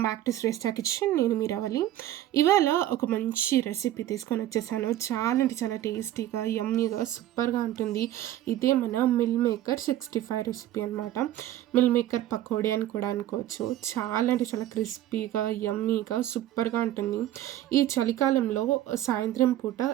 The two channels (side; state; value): left; quieter; 13.1 dB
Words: back to Shreshta kitchen. నేను మీ రవలి. ఇవాళ ఒక మంచి రెసిపీ తీసుకొని వచ్చేసాను. చాలా అంటే చాలా టేస్టీగా, యమ్మీగా, సూపర్గా ఉంటుంది. ఇదే మన మిల్ మేకర్ 65 రెసిపీ అనమాట. మిల్ మేకర్ పకోడీ అని కూడా అనుకోవచ్చు. చాలా అంటే చాలా క్రిస్పీగా, యమ్మీగా, సూపర్గా ఉంటుంది. ఈ చలికాలంలో సాయంత్రం పూట